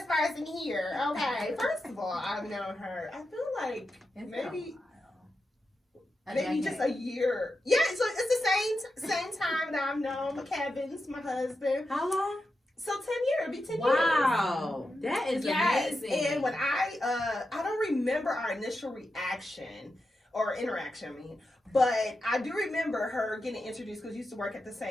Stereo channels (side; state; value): both; normal; correlation 0.89